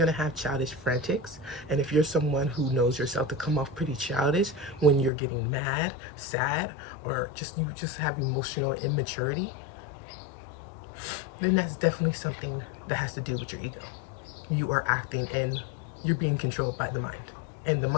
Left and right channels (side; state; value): right; drops out; at 5.1 s